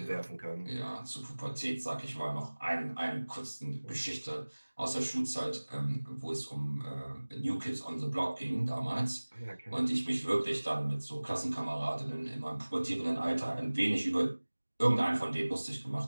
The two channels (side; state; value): both; inverted; correlation -1.00